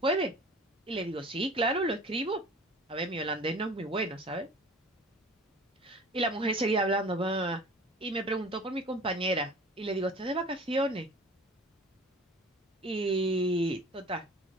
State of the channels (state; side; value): normal; both; correlation 0.43